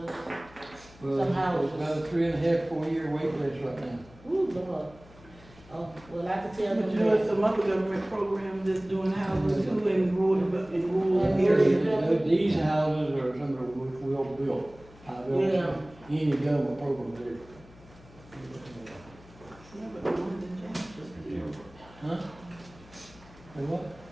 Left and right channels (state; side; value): noise; left; hum, 23 dB below the sound